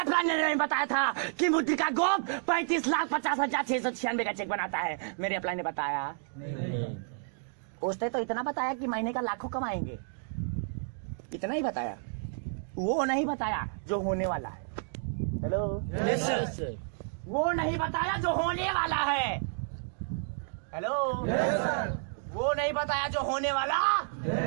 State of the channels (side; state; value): left; silent; digital silence